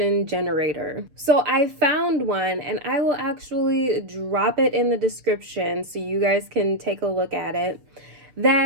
generator. So I found one, and I will actually drop it in the description so you guys can take a look at it.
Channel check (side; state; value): left; late; 6.6 ms